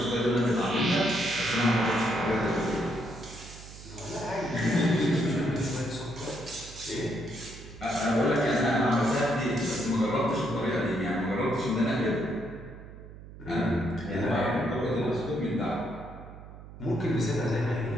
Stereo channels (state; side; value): noise; right; hum, 16 dB below the sound